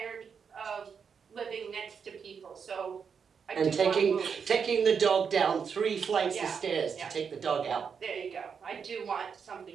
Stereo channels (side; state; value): left; quieter; 6.5 dB